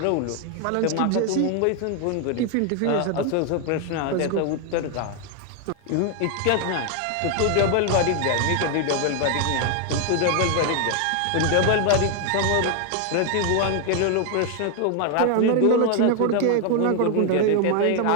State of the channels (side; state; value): both; different; correlation 0.00